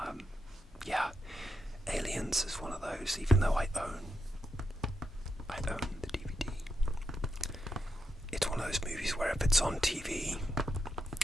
Yeah, Aliens is one of those. Even though I own the DVD, it's one of those movies where if it's on TV,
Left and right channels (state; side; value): normal; both; correlation 0.83